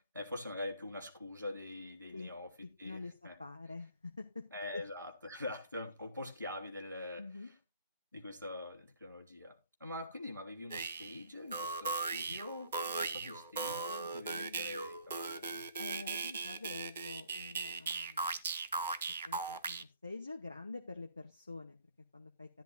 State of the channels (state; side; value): inverted; both; correlation -0.61